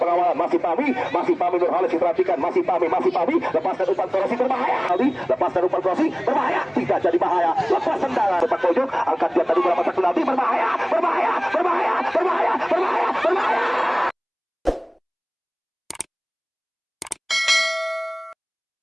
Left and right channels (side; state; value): both; identical; correlation 1.00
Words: Masih Pami Nurholis diperhatikan, masih Pami, lepaskan umpan Krosi berbahaya. Aldi lepaskan umpan Krosi berbahaya, tidak jadi bahaya. Lepas tendangan sepak pojok, angkat dia tadi berapa tak penalti, berbahaya.